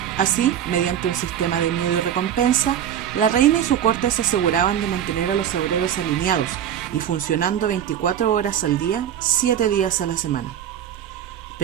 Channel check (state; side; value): quieter; left; 9.8 dB